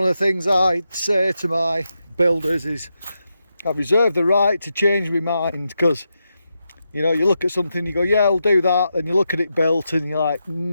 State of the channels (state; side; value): inverted; both; correlation -0.86